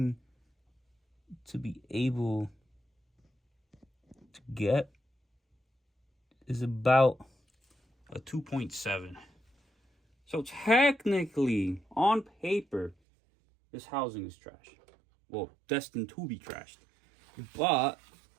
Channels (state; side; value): drops out; left; at 13.0 s